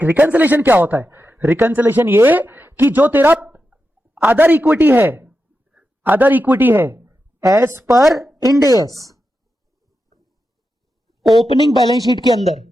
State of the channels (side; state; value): both; normal; correlation 0.89